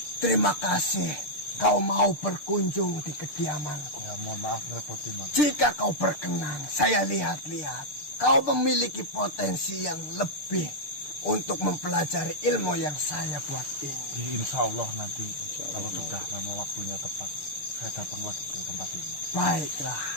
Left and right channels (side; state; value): right; late; 6.7 ms